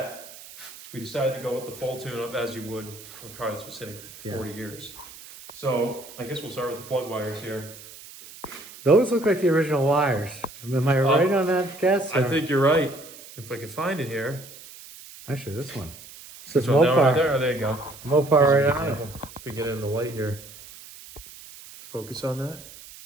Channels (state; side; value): noise; right; hiss, 17 dB below the sound